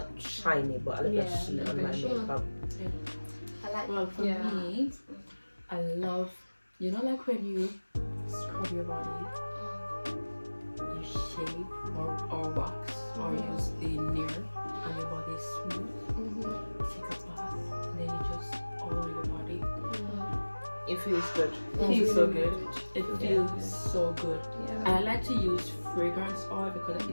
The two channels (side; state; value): both; inverted; correlation -1.00